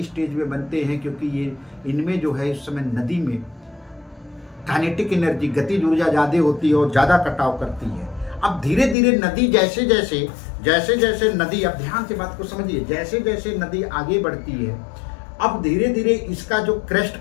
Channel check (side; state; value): right; drops out; at 9.0 s